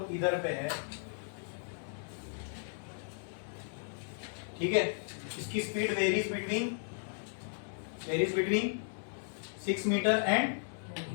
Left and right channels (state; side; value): silent; right; digital silence